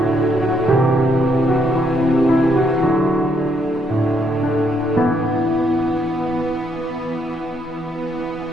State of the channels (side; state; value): both; normal; correlation 0.73